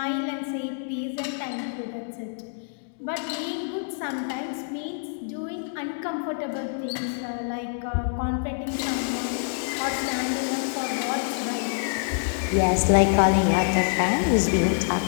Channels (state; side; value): silent; right; digital silence